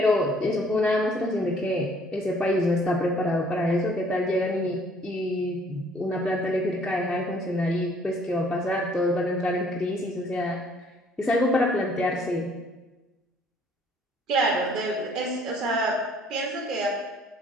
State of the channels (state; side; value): normal; both; correlation 0.60